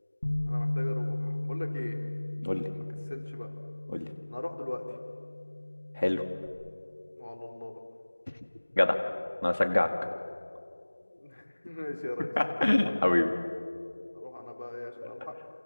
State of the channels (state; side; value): inverted; both; correlation -1.00